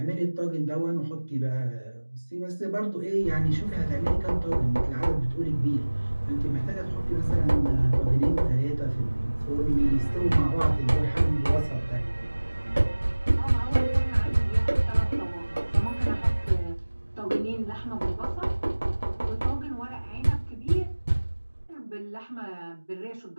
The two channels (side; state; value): both; inverted; correlation -1.00